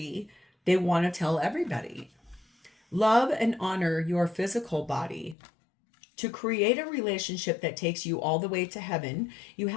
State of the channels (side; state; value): right; drops out; at 5.4 s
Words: They want to tell everybody. Love and honor your physical body. To create a relationship that takes you all the way to heaven, you